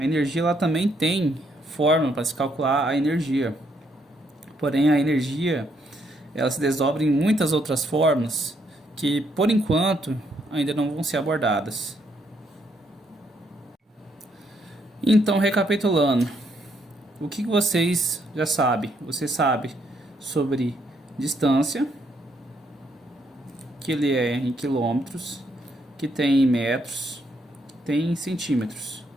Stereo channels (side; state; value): both; normal; correlation 0.73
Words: energia ela também tem fórmula para se calcular a energia. Porém a energia ela se desdobra em muitas outras fórmulas que por enquanto ainda não vão ser abordadas. Então, recapitulando, o que vocês já sabem? Você sabe sobre distância, que ele é em quilômetros, que tem em metros, que tem em centímetros.